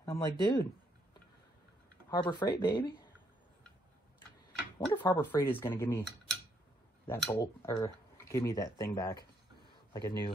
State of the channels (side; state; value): both; normal; correlation 0.73